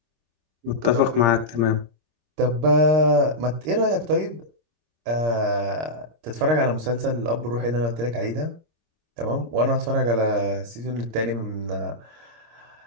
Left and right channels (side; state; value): left; late; 26 ms